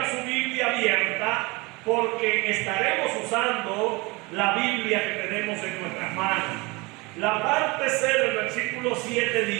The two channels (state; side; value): quieter; left; 25.3 dB